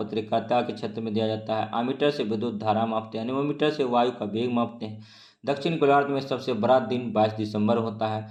के क्षेत्र में दिया जाता है। आमीटर से विद्युत धारा मापते हैं। एनीमोमीटर से वायु का वेग मापते हैं। दक्षिण गोलार्ध में सबसे बड़ा दिन 22 दिसंबर होता है।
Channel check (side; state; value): both; identical; correlation 1.00